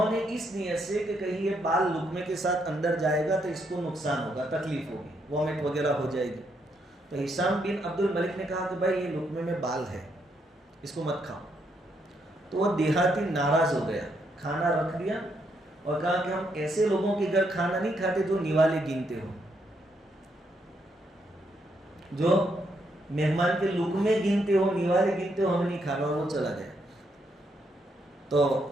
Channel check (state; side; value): normal; both; correlation 0.76